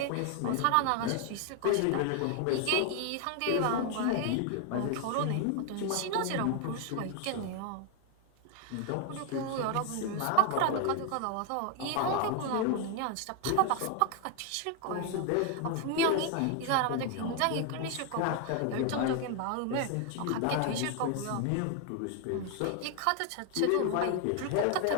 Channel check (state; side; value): different; both; correlation 0.00